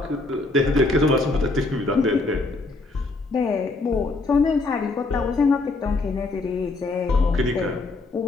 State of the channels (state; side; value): quieter; right; 3.3 dB